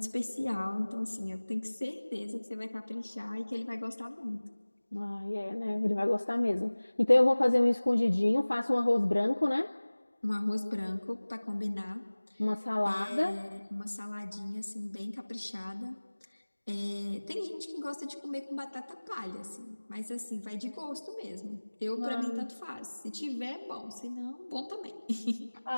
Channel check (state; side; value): inverted; both; correlation -1.00